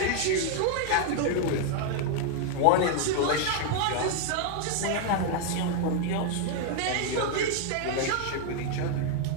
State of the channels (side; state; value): both; different; correlation 0.00